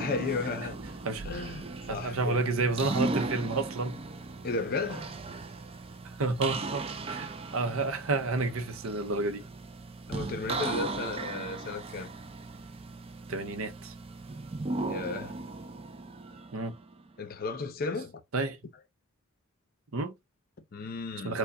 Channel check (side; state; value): both; normal; correlation 0.21